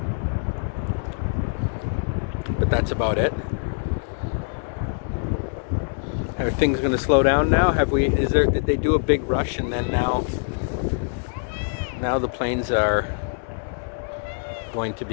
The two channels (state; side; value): silent; right; 63 dB below the other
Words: But that's about it. Are things going to slow down now? Did they do a big rush and then now the planes are going to